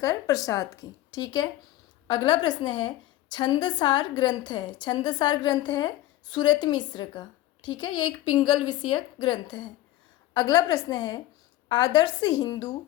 प्रसाद की, ठीक है। अगला प्रश्न है, छंदसार ग्रंथ है। छंदसार ग्रंथ है सुरत मिश्र का, ठीक है। ये एक पिंगल विषयक ग्रंथ है। अगला प्रश्न है, आदर्श हिंदू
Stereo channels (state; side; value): quieter; right; 15.2 dB